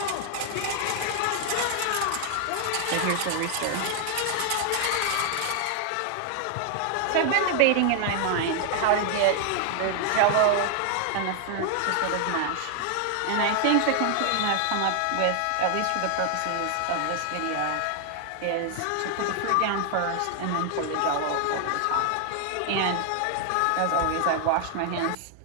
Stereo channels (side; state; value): both; different; correlation 0.00